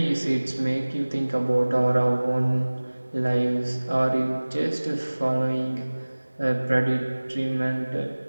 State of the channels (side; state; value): both; inverted; correlation -1.00